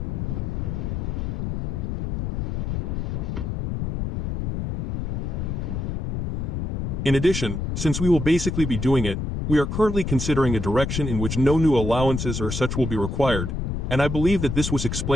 In addition, since we will basically be doing it, we are currently considering a direction in which no new allowances or such will be required, and I believe that this was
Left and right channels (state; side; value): noise; left; rumble, 2 dB below the sound